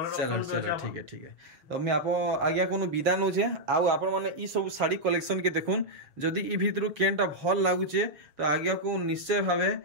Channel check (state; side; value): late; left; 7.0 ms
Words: चलो चलो ठीक है तो मैं आप आज्ञा कोनो विदा न छे आउ आपण माने ई सब साड़ी कलेक्शन के देखुन जदी ई भितरु केनटा भल लागुचे तो आज्ञा को निश्चय भावे